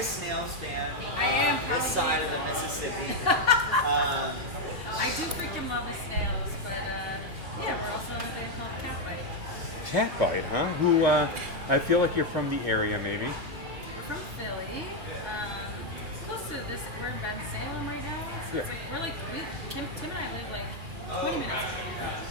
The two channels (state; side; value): late; left; 2.4 ms